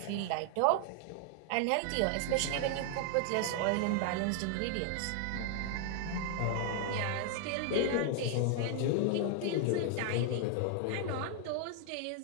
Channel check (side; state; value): both; different; correlation 0.00